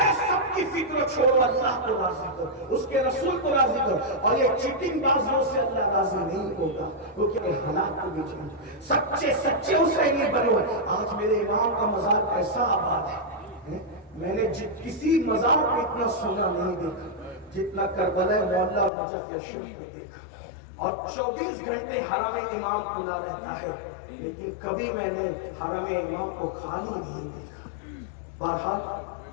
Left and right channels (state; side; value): drops out; right; at 18.9 s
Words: سب کی فکر چھوڑو، اللہ کو راضی کرو، اس کے رسول کو راضی کرو، اور یہ چیٹنگ بازوں سے اللہ راضی نہیں ہوتا، کیونکہ حالات کو بھی چاہیے، سچے سچے حسینی بنے ہوئے۔ آج میرے امام کا مزار کیسا آباد ہے، میں نے کسی مزار کو اتنا سونا نہیں دیکھا جتنا کربلا معلیٰ اور نجف اشرف میں دیکھا، اور 24 گھنٹے حرم امام کھلا رہتا ہے، لیکن کبھی میں نے حرم امام کو خالی نہیں دیکھا۔